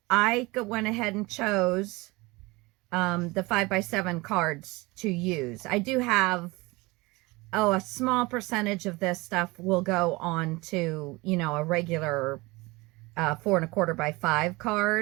I went ahead and chose the 5x7 cards to use. I do have, a small percentage of this stuff will go on to, a regular 4 1/4 by 5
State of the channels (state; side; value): quieter; left; 23.2 dB